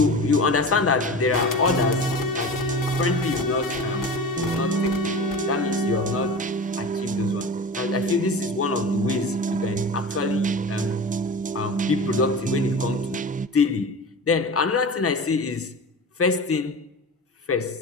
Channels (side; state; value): both; normal; correlation 0.32